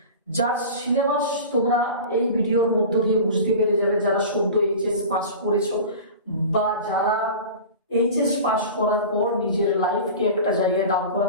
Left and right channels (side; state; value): both; inverted; correlation -0.34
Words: যার সিলেবাস তোমরা এই ভিডিওর মধ্য দিয়ে বুঝতে পেরে যাবে, যারা সদ্য এইচএস পাস করেছো বা যারা এইচএস পাস করার পর নিজের লাইফকে একটা জায়গায় দাঁড়